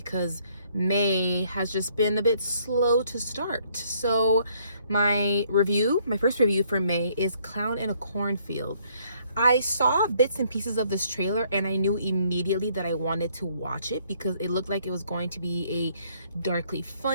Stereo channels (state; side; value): inverted; both; correlation -0.66